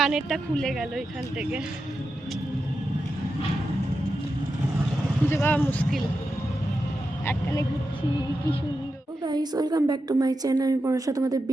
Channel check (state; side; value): normal; both; correlation 0.89